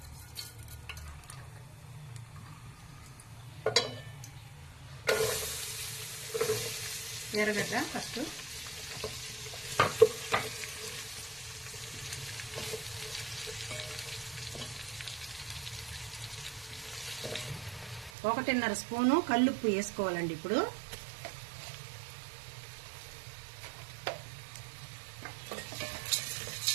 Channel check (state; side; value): drops out; left; at 18.1 s